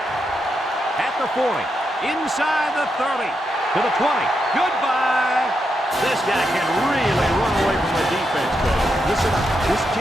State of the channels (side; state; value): both; normal; correlation 0.83